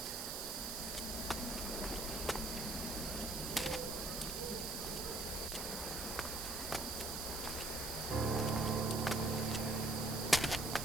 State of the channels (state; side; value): noise; right; hiss, 4 dB below the sound